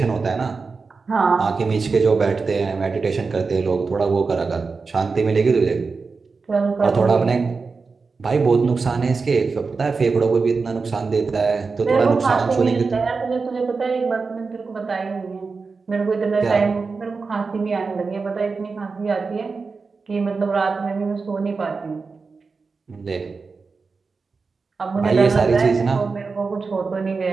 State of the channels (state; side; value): quieter; left; 4.5 dB